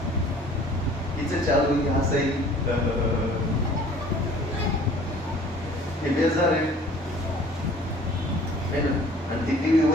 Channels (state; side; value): normal; both; correlation 0.50